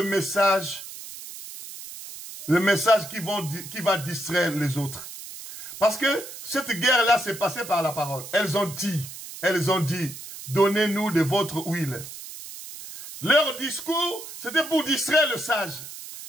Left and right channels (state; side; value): noise; right; hiss, 12 dB below the sound